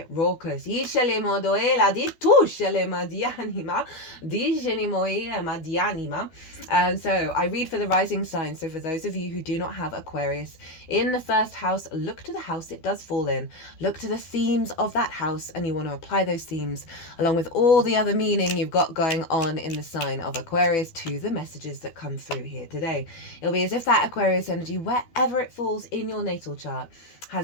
raucous. So I read for the rising sign. So for those of you who do not have Aquarius in the first house, look to the house it does fall in. Look to the themes of that house, and you want to apply those themes along with all the other meaning you've got going on in the sign of Aquarius to the messages that come through here today. It'll be as if that Aquarius energy, wherever it falls in your natal chart,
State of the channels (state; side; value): late; right; 12 ms